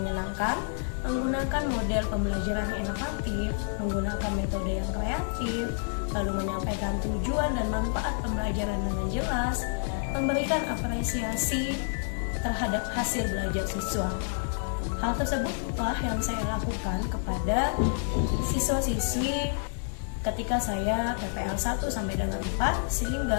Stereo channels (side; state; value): right; silent; 58 dB below the other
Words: menggunakan model pembelajaran yang inovatif, menggunakan metode yang kreatif, lalu menyampaikan tujuan dan manfaat pembelajaran dengan jelas, memberikan apresiasi terhadap hasil belajar siswa. Hal tersebutlah yang saya lakukan kepada siswa-siswi ketika saya PPL 1 sampai dengan 4